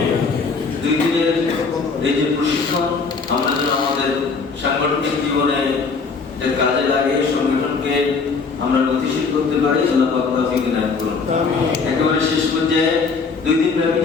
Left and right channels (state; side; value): quieter; right; 4.8 dB